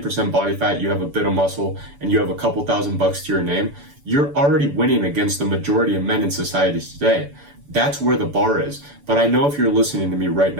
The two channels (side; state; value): left; late; 6.9 ms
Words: body fat, you have a bit of muscle, and you have a couple $1,000 to your name, you're already winning against the majority of men in society today. That's where the bar is. But I know if you're listening to me right